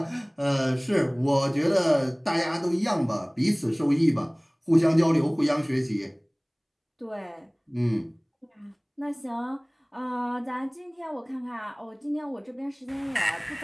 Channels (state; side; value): identical; both; correlation 1.00